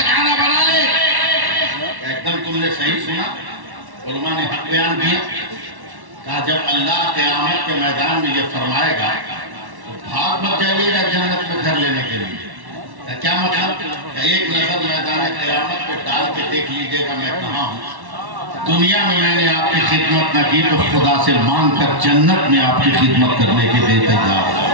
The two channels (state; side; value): late; left; 1.1 ms